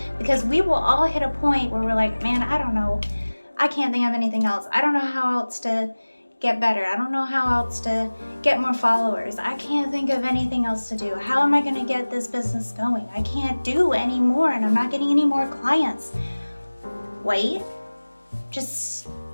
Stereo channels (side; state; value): both; inverted; correlation -1.00